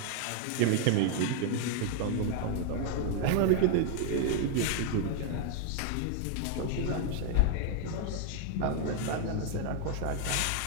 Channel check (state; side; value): different; both; correlation 0.00